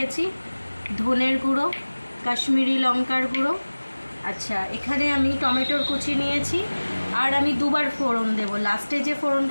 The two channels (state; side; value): inverted; both; correlation -1.00